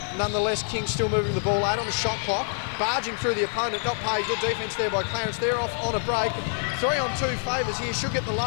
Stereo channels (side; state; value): right; silent; 61 dB below the other